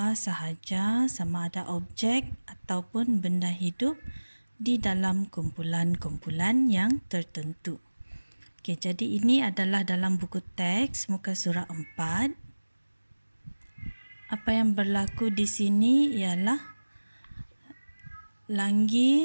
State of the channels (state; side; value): inverted; both; correlation -1.00